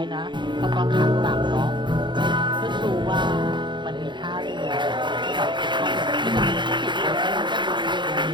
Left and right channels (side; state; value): left; late; 0.23 ms